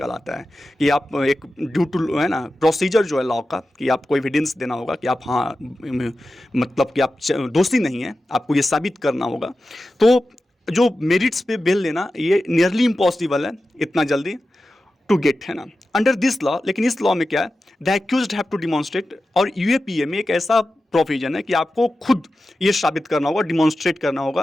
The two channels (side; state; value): both; normal; correlation 0.93